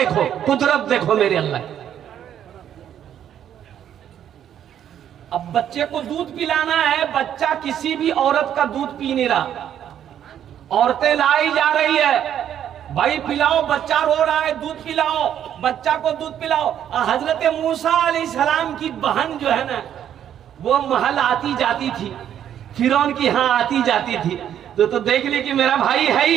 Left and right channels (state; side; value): quieter; left; 10.0 dB